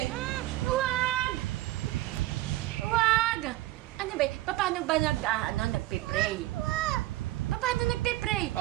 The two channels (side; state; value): left; quieter; 16.9 dB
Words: Huwag! Huwag! Ano ba? Paano ba nagpe-pray? Paano nagpe-pray?